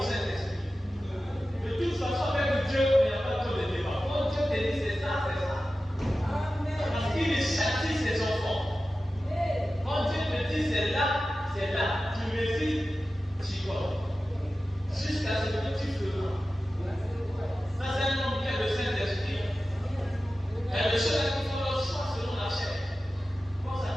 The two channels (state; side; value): normal; both; correlation 0.94